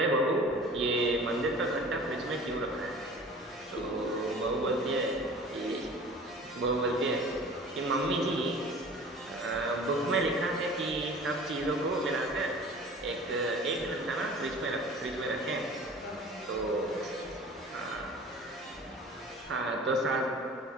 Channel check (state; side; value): normal; both; correlation 0.43